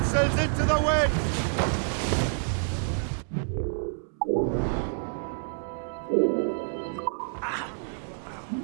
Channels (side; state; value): left; silent; 59 dB below the other